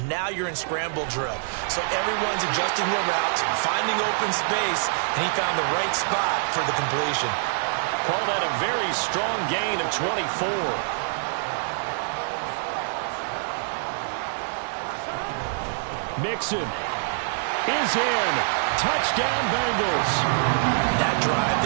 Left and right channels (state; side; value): silent; left; digital silence